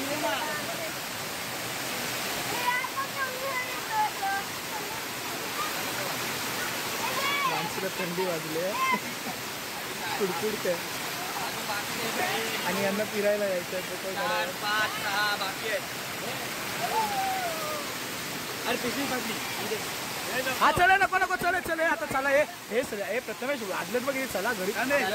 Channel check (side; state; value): both; identical; correlation 1.00